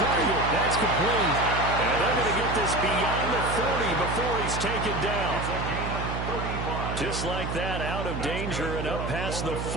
That's complete. And they're going to get this beyond the 40 before he's taken down. Just like that, out of danger and up past the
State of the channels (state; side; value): noise; right; hum, 4 dB below the sound